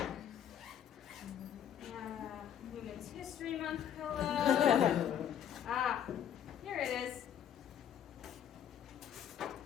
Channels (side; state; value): right; quieter; 9.5 dB